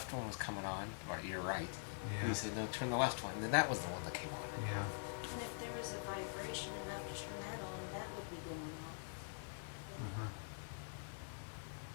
one was coming on, or you're right. Yeah. You said no, turn the left one, and then that was the one that came on. Yeah. And if there was a vibration enough to turn that on, that would be going off. Uh-huh.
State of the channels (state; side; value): silent; right; digital silence